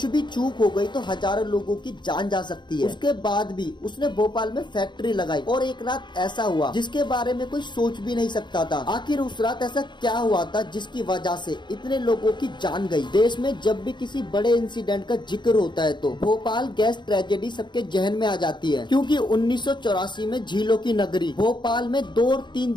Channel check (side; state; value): right; late; 0.22 ms